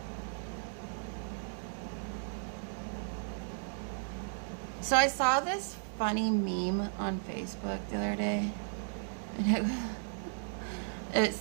So I saw this funny meme on Facebook the other day. And it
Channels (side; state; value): left; silent; digital silence